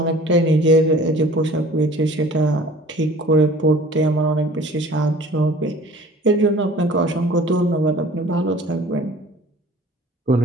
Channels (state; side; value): normal; both; correlation 0.47